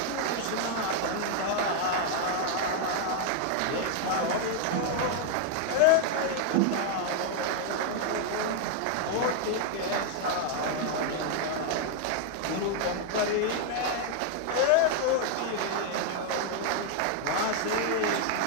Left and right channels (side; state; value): both; different; correlation 0.00